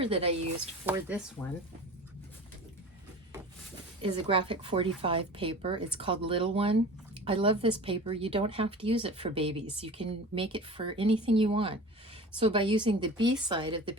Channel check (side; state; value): both; normal; correlation 0.37